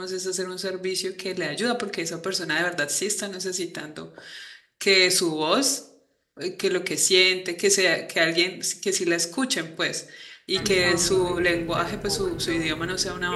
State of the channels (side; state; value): both; identical; correlation 1.00